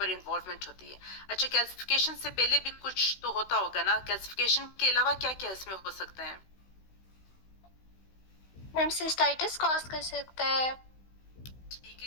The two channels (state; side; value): late; right; 16 ms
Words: इन्वॉल्वमेंट होती है। अच्छा, कैल्सिफिकेशन से पहले भी कुछ तो होता होगा ना, कैल्सिफिकेशन के अलावा क्या क्या इसमें हो सकता है? मैम सिस्टाइटिस कॉज कर सकता है। ठीक